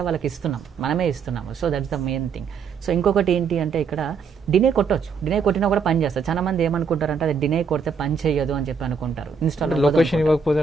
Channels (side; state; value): left; quieter; 5.6 dB